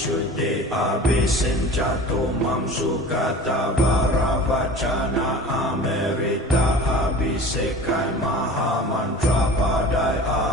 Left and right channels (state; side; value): normal; both; correlation 0.39